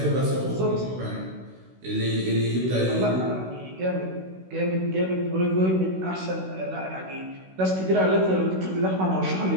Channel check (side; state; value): left; late; 16 ms